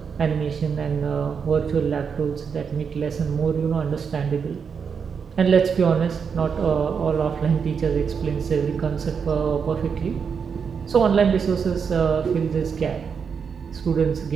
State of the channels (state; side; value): quieter; left; 6.3 dB